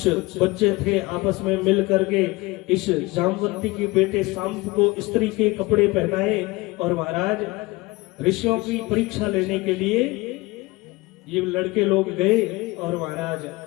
बच्चे थे आपस में मिल करके इस जामवंती के बेटे सांब को स्त्री के कपड़े पहनाए, और महाराज ऋषियों की परीक्षा लेने के लिए ये लड़के लोग गए, और महाराज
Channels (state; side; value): quieter; right; 22.4 dB